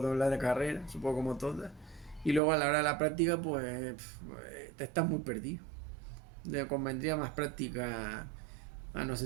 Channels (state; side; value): drops out; left; at 2.4 s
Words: doblar de carrera, supongo como todas. Y luego a la hora de la práctica, pues te estás muy perdido. Le convendría más práctica, no